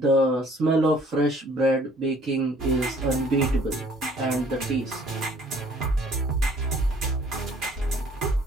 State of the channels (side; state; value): both; normal; correlation 0.57